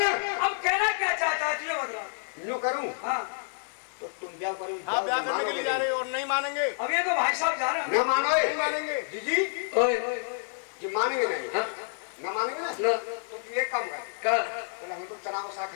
अब कहना क्या चाहता है तुझे मतलब? यूं करूं हाँ तो तुम ब्याह करो हाँ ब्याह करने के लिए जा रहे हो और नहीं मानेंगे। अब ये तो भाई साहब जा रहे हैं। न मानो नहीं मानेंगे। जी ओए जी मानेंगे नहीं हाँ न मानेंगे ना ना तो तुम एक काम कर कर चलो हम तो चना को साग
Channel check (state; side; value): silent; right; 59 dB below the other